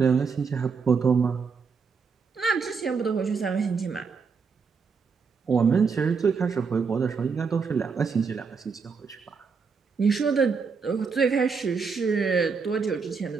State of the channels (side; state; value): left; quieter; 5.4 dB